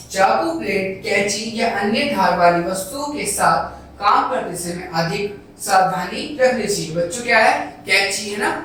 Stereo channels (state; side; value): identical; both; correlation 1.00